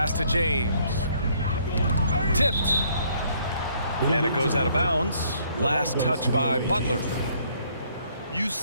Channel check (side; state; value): both; inverted; correlation -0.65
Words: to James. Tipped. And it goes out of bounds. Last touch by Butler. You